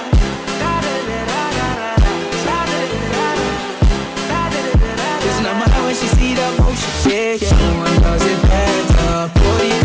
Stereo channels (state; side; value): identical; both; correlation 1.00